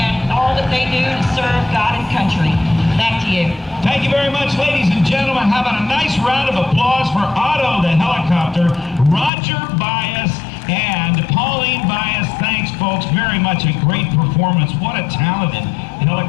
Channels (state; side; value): drops out; right; at 9.3 s